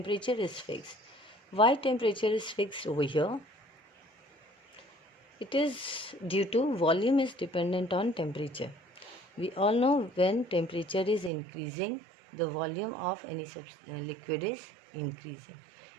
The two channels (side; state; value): left; drops out; at 11.3 s